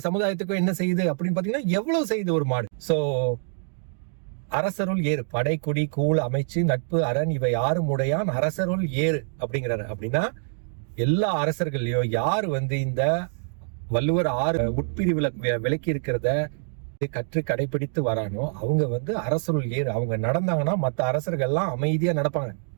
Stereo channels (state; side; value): silent; left; digital silence